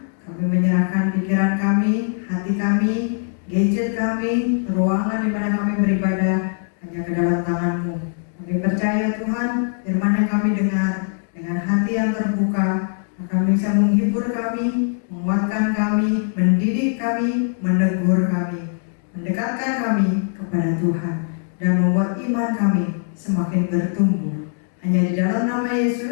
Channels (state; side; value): silent; right; 65 dB below the other